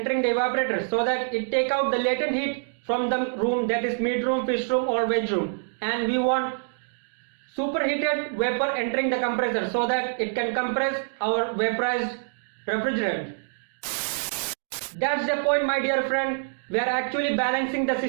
the evaporator so that it take out the latent heat from the room, that is meat room, fish room or veg room, and we want superheated vapor entering the compressor so that it can compress our vaporized refrigerant. That's the point, my dear friend. We are actually balancing the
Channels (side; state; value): left; silent; digital silence